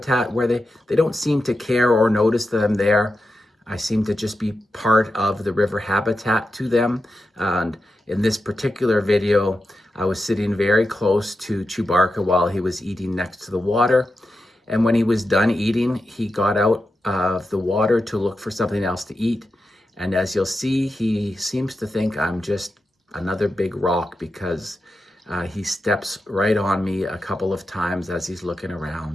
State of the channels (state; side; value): normal; both; correlation 0.89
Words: where they don't seem to care or notice that I'm there. I seem to just be part of the river habitat to them. And in this particular video, I was sitting very close to Chewbacca while he was eating next to the water. And when he was done eating, he got out of the water to look for something else to eat. And as you'll see, he seems to think I'm just another big rock because he steps right on me a couple of times as he's looking